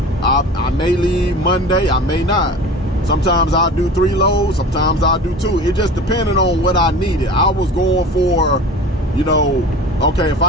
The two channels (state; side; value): normal; both; correlation 0.38